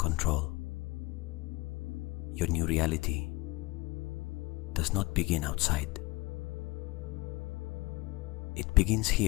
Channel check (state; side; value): quieter; right; 23.1 dB